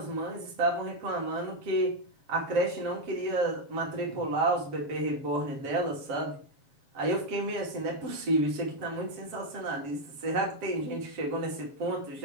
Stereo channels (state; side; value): late; left; 7.2 ms